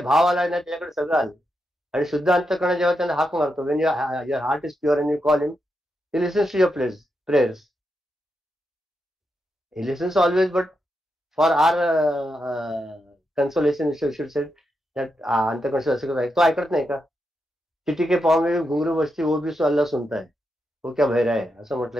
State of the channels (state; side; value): normal; both; correlation 0.85